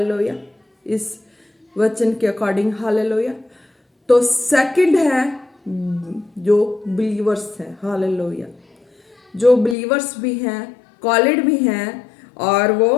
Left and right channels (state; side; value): drops out; right; at 9.8 s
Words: इस वचन के अकॉर्डिंग। हालेलुया। तो सेकंड है जो बिलीवर्स हैं। हालेलुया, जो बिलीवर्स भी हैं, कॉलेड भी हैं, और वो